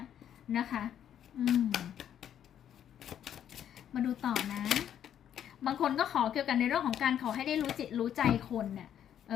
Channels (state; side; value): quieter; right; 9.9 dB